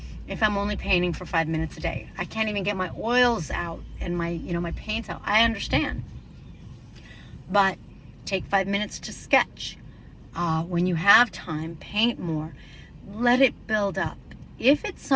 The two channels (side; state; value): both; identical; correlation 1.00